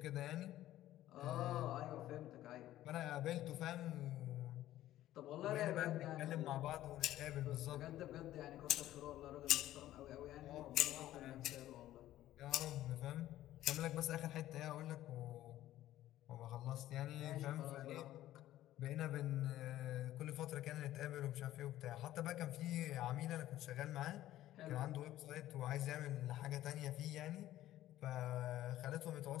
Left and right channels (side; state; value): right; quieter; 14.0 dB